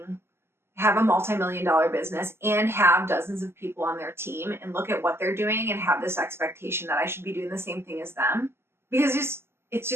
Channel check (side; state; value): left; late; 0.12 ms